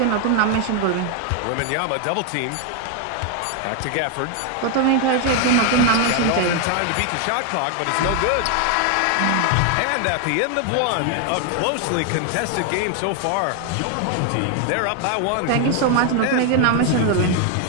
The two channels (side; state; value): both; different; correlation 0.01